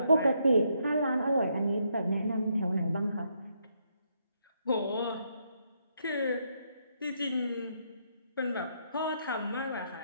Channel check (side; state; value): both; inverted; correlation -0.76